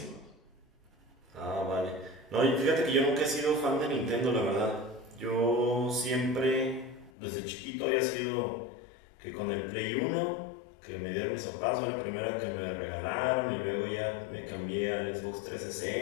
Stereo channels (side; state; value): right; drops out; at 7.1 s